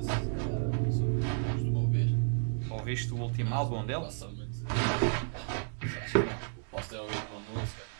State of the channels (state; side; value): silent; left; 56 dB below the other